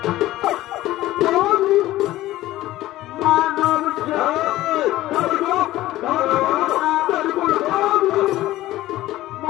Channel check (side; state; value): right; quieter; 15.9 dB